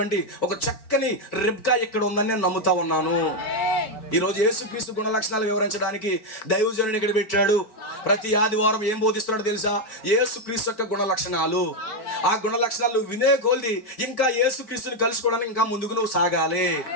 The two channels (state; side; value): late; right; 4.6 ms